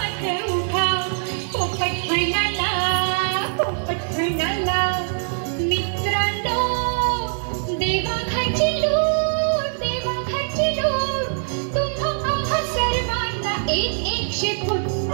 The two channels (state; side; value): silent; left; digital silence